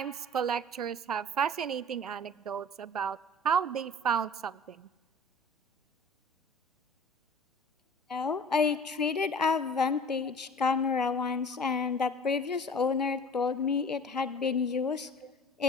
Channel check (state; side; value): normal; both; correlation 0.44